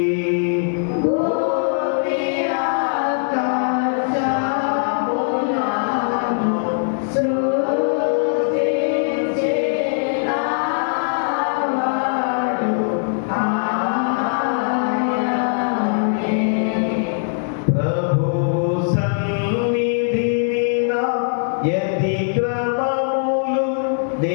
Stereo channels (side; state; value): right; silent; digital silence